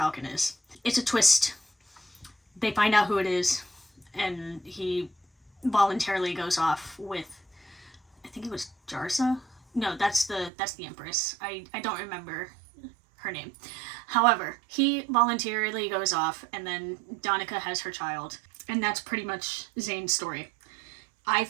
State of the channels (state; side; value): drops out; left; at 10.5 s